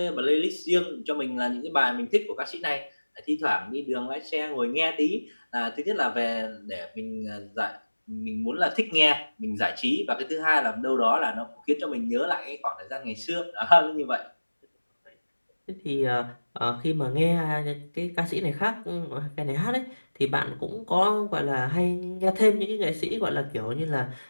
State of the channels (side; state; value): both; inverted; correlation -1.00